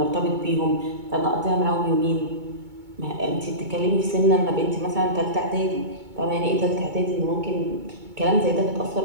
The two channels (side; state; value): left; late; 2.2 ms